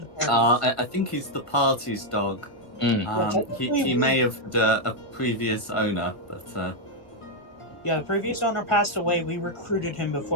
party. I think he's the party's dog. Mm. He may have had a previous owner, but Yeah, the previous owner passed away. We recruited him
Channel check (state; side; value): late; right; 1.6 ms